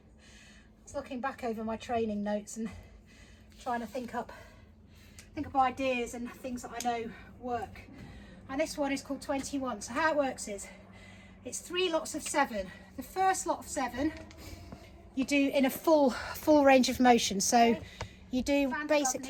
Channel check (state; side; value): identical; both; correlation 1.00